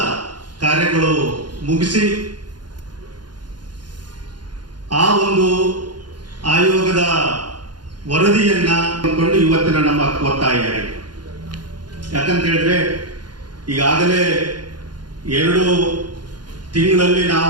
ಕಾರ್ಯಗಳು ಮುಗಿಸಿ ಆ ಒಂದು ಆಯೋಗದ ವರದಿಯನ್ನ ಕೊಂಡು ಇವತ್ತಿನ ನಮ್ಮ ಒತ್ತಾಯ. ಯಾಕಂತ ಹೇಳಿದ್ರೆ ಈಗಾಗಲೇ 2 ತಿಂಗಳಲ್ಲಿ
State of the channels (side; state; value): left; late; 0.71 ms